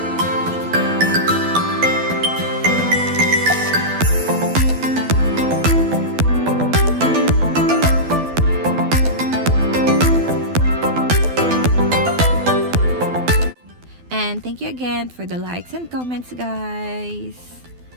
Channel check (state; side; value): late; left; 12 ms